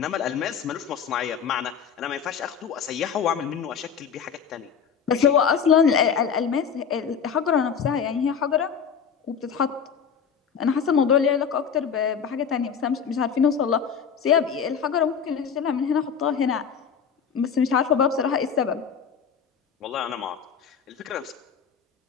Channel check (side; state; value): right; quieter; 7.0 dB